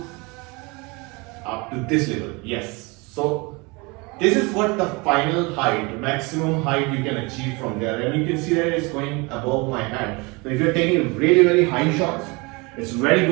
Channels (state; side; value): quieter; left; 27.1 dB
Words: this level. Yes, so this is what the final height, maximum height you can achieve from there, and you can see that it's going above my hand. So if you're taking really very high shots, it's very